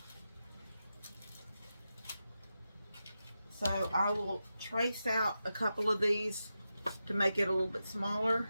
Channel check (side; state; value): both; inverted; correlation -0.90